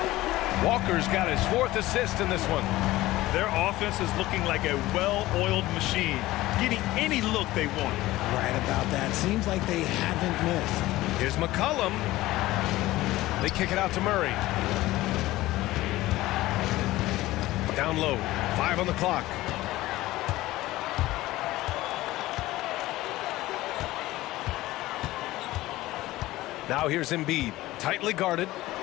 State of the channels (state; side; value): quieter; right; 17.3 dB